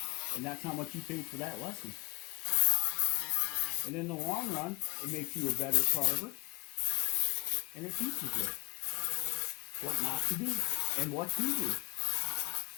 and that's how much you paid for that lesson. And in the long run, it makes you a better carver, and it teaches you what not to do and what to do.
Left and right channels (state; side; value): quieter; right; 24.8 dB